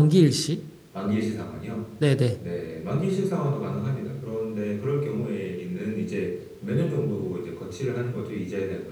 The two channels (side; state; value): both; identical; correlation 1.00